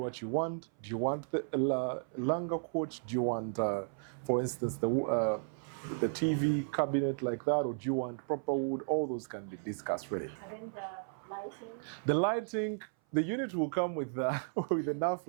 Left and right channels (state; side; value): silent; left; 55 dB below the other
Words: you want. Do you want the longer couch? Do you want, for instance, the TV cabinet like that? Or do you want proper wood? All those can be discussed really. And then the lighting. The lighting, the unit will come with with enough